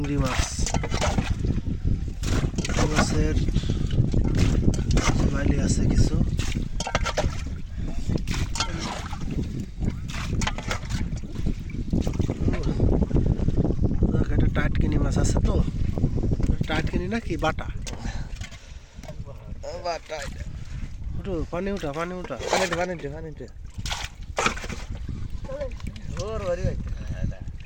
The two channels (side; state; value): both; identical; correlation 1.00